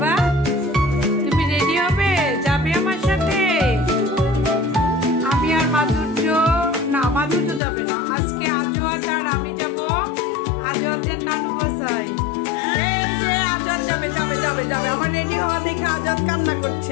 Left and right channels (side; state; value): right; drops out; at 7.6 s